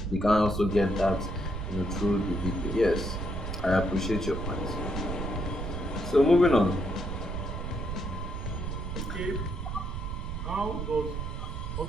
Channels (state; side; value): noise; right; rumble, 4 dB below the sound